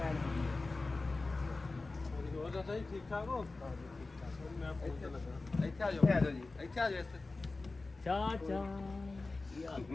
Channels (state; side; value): quieter; right; 3.5 dB